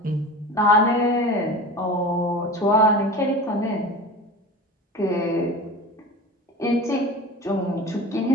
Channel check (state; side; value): normal; both; correlation 0.34